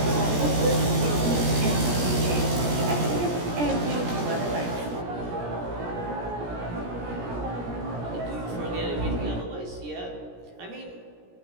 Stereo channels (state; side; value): late; left; 17 ms